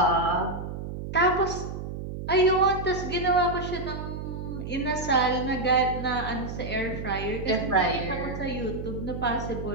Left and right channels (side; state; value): right; noise; hum, 7 dB below the sound